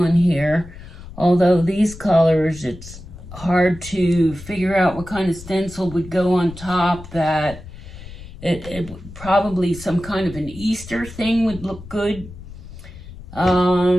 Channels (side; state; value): left; noise; rumble, 15 dB below the sound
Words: in here, although these colors, it's hard to figure out what kind of stencil would go on top. That it probably some kind of an Easter thing would look good.